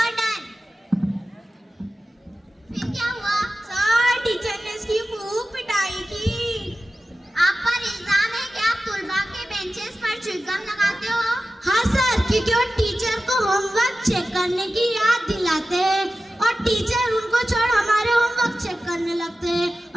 फिर क्या हुआ? सर पर च्युइंगम लगाते हो? हाँ सर, क्योंकि वो टीचर को होमवर्क चेक करने की याद दिलाते हैं और टीचर उनको छोड़ हमारे होमवर्क चेक करने लगते हैं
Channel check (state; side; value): normal; both; correlation 0.94